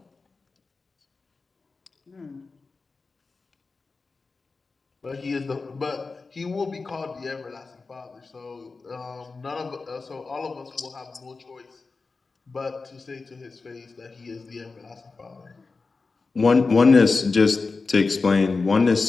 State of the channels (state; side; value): quieter; right; 4.1 dB